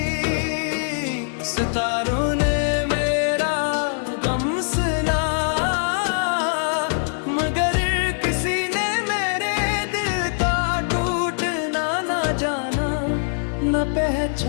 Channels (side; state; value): right; silent; digital silence